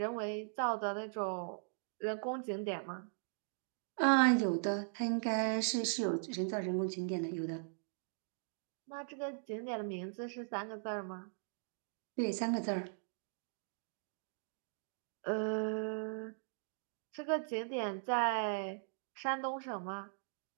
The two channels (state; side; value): silent; left; digital silence